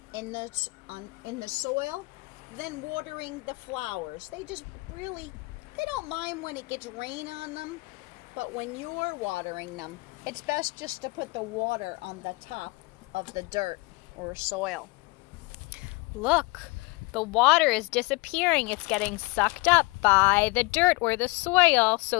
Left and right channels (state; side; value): quieter; right; 25.5 dB